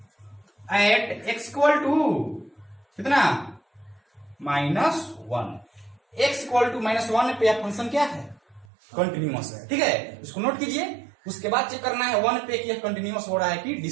at x equal to कितना? -1। x इक्वल टू -1 पे फंक्शन क्या है? कंटिन्यूअस है। ठीक है, इसको नोट कीजिए। उसके बाद चेक करना है 1 पे कि कंटिन्यूअस हो रहा है कि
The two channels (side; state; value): left; drops out; at 8.7 s